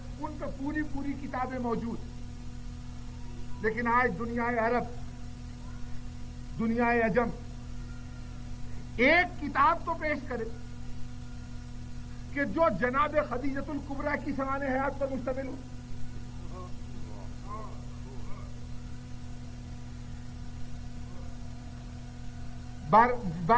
ان پہ پوری پوری کتابیں موجود. لیکن آج دنیا عرب، دنیا عجم ایک کتاب تو پیش کرے کہ جو جناب خدیجۃ الکبریٰ کی سمان حیات پر مشتمل ہو.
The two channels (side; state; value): both; identical; correlation 1.00